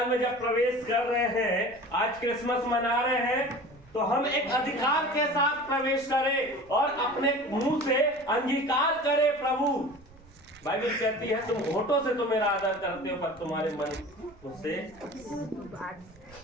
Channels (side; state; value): right; noise; rumble, 25 dB below the sound